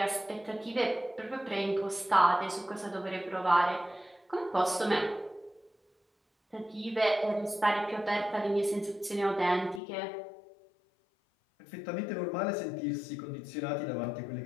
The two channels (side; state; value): right; drops out; at 9.8 s